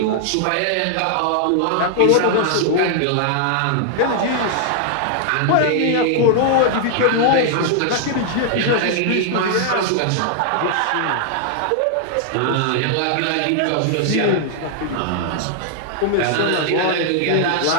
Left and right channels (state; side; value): different; both; correlation 0.00